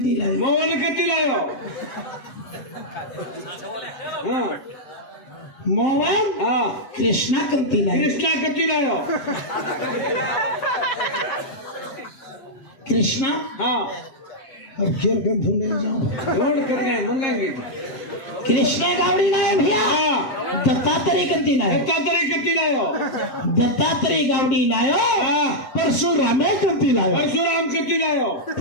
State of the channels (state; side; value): late; right; 7.5 ms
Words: लायो मोहन कती लायो मोहन कृष्णा कंती लायो कृष्णा कती लायो कृष्णा अब फिर कम ढूंढने जाओ ढूंढ कर गए मंगाएंगे कृष्णा गावड़ी लायो भैया दत्तात्रेय कंती लायो दत्तात्रेय कती लायो दत्तात्रेय गावड़ी लायो परशुरामे कंती लायो परशुराम कती लायो